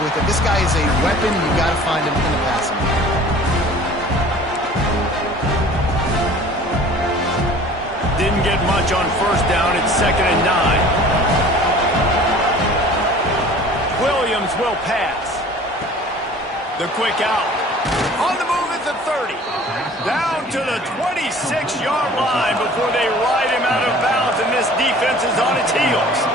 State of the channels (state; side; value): normal; both; correlation 0.47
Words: with it. This guy is a weapon, and you got to find him in the passing game. Didn't get much on 1st down. It's 2nd and 9. Williams defense will pass. The quick out. On the move at the 30. Down to the 26-yard line before they ride him out of bounds, and this defense is on its heels.